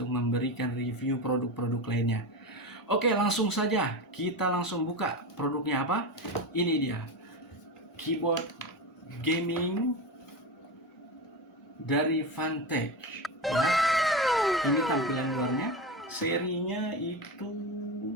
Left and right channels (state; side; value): normal; both; correlation 0.21